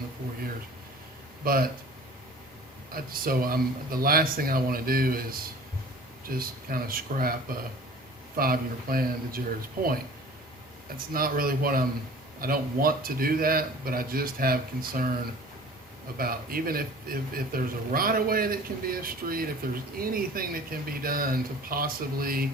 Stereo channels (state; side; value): normal; both; correlation 0.45